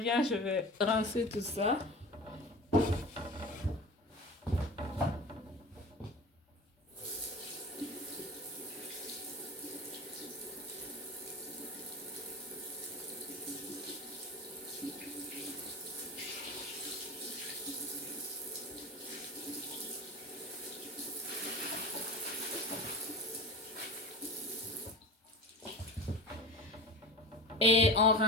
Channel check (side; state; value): both; normal; correlation 0.32